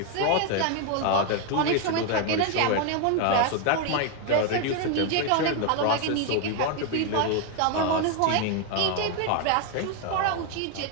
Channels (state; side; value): different; both; correlation 0.01